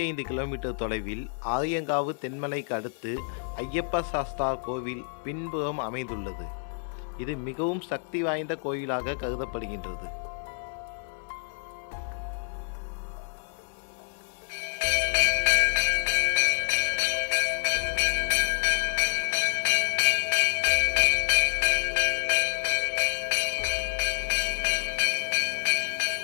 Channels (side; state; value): right; silent; 59 dB below the other